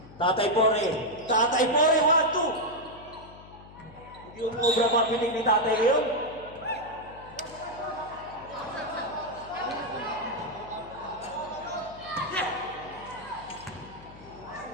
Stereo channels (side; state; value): left; noise; hum, 19 dB below the sound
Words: Tatay Pore, 1-2. Hindi umubra mapinig ni Tatay ngayon.